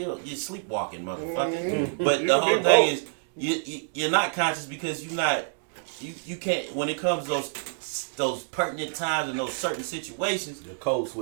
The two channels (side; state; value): left; silent; digital silence